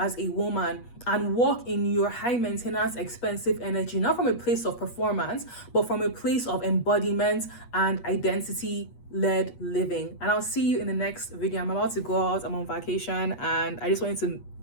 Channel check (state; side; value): late; right; 8.3 ms